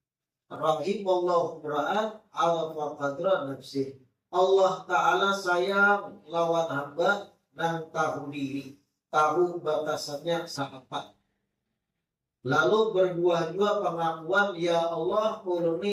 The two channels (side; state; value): both; identical; correlation 1.00